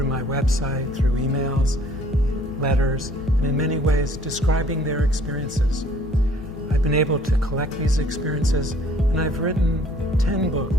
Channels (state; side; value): normal; both; correlation 0.57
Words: my website, through emails, letters, and in many ways describing their experiences. I've been able to collect these experiences, and I've written 10